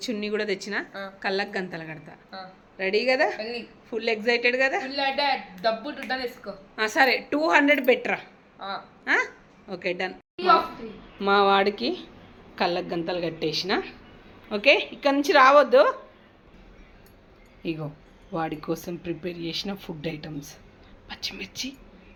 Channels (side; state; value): both; identical; correlation 1.00